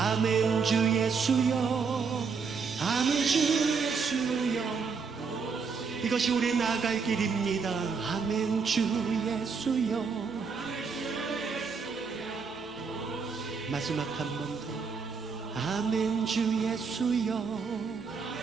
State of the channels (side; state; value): left; quieter; 5.3 dB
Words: 주 예수여, 아멘 주 예수여, 이것이 우리 나갈 길입니다. 아멘 주 예수여. 마지막 한 번 더. 아멘 주 예수여,